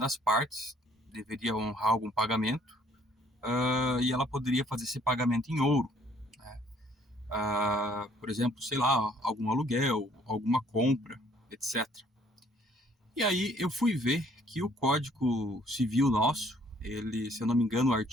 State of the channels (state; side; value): normal; both; correlation 0.61